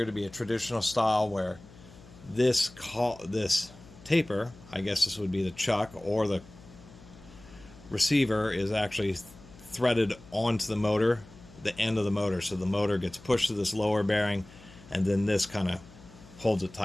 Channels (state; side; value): noise; left; hum, 21 dB below the sound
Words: to be a traditional style where this taper, I guess this would be the chuck, or the receiver is actually threaded onto the motor, the end of the motor, so the motor gets pushed to this lower bearing, and then this kind of holds it